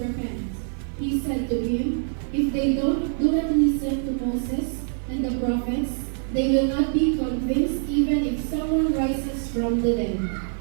repent. He said to him, If they do not listen to Moses and the prophets, they will not be convinced even if someone rises from the dead.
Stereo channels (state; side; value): silent; left; 60 dB below the other